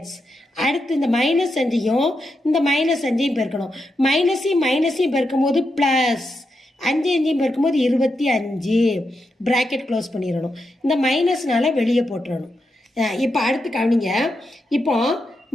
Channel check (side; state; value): both; normal; correlation 0.85